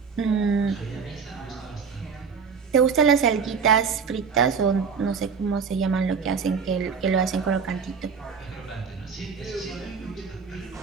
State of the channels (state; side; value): quieter; left; 5.9 dB